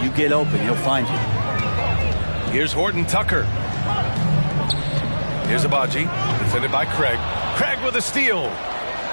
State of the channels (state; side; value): inverted; both; correlation -1.00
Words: you get open, he'll find you. Here's Horton Tucker. Here's Abaji, defended by Craig. Craig with a steal.